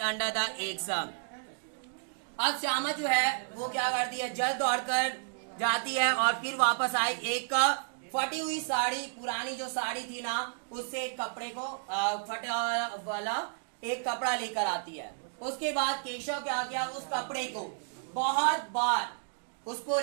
under the eggs. अब श्यामा जो है वो क्या करती है, जल्द दौड़कर जाती है और फिर वापस आई, एक फटी हुई साड़ी, पुरानी जो साड़ी थी ना उससे एक कपड़े को फटा वाला एक कपड़ा लेकर आती है। उसके बाद केशव क्या किया, उस कपड़े को बहुत बार उसको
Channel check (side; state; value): left; silent; digital silence